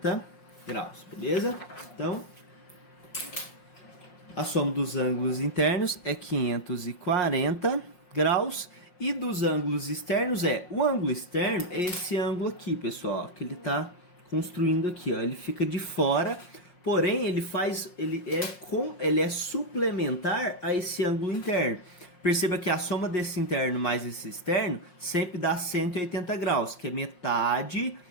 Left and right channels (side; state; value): right; late; 5.6 ms